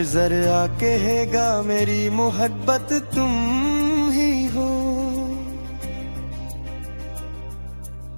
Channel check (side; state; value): both; inverted; correlation -1.00